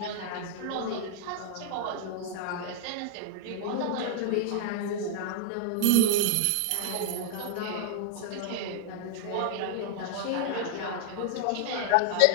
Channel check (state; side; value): different; both; correlation -0.01